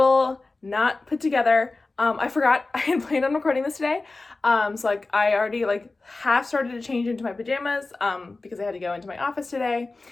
not put together. I forgot I had planned on recording this today. So like I already like half started to change into my pajamas because I had to go into my office today,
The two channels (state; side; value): quieter; right; 3.4 dB